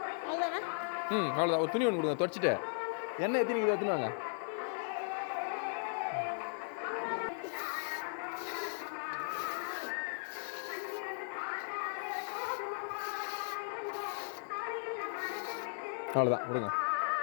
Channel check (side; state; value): right; silent; 53 dB below the other